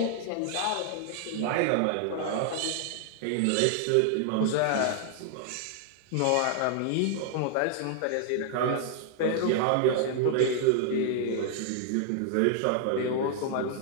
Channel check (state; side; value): different; both; correlation -0.01